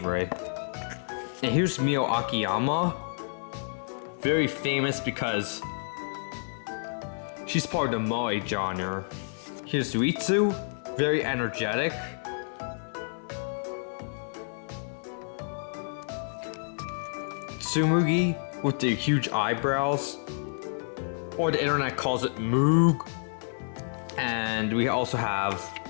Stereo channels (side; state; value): right; silent; 58 dB below the other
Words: And here's Mio Akiyama. Very famous because she's part of the moe genre. Here's Ritsu, very energetic. Tsumugi with the huge eyebrows, or the internet calls it Moog. And we also have